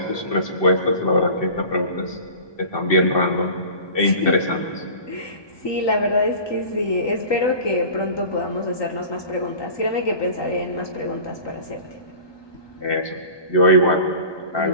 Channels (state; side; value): late; right; 1.2 ms